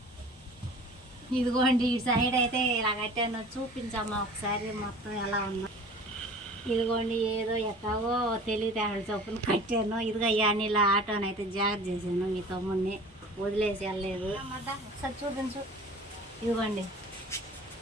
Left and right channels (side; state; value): both; normal; correlation 0.43